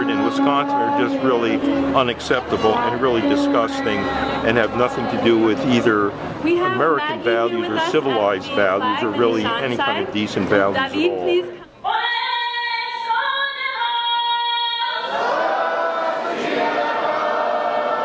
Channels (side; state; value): both; identical; correlation 1.00